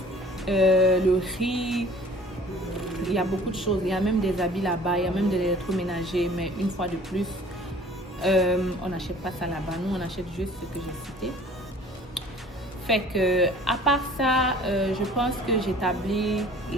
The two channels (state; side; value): normal; both; correlation 0.49